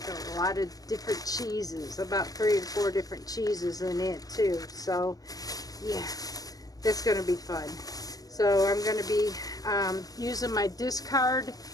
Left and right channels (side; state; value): right; late; 0.17 ms